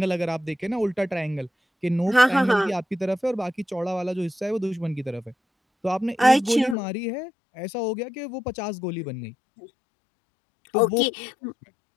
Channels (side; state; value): right; drops out; at 6.8 s